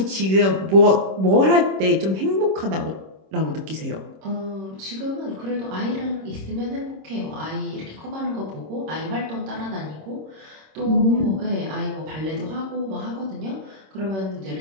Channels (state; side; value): late; left; 26 ms